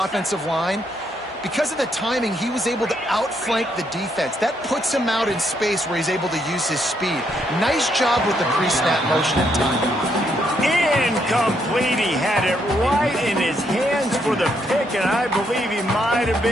line, because of the timing, he was able to outflank the defense. That puts him out in space where he's able to use his speed. Nice job with the pre-snap motion and timing. Incomplete. He had it right in his hands for the pick, and I believe he might have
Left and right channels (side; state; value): both; normal; correlation 0.75